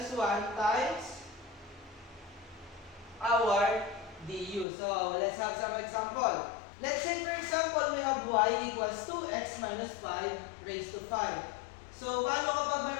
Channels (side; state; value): right; drops out; at 4.7 s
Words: 1 times our du. So, let's have some example. Let's say, for example, we have y equals 2x minus 5 raised to 5. So, paano kapag